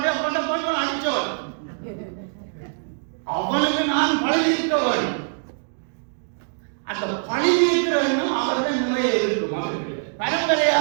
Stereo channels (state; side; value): silent; left; digital silence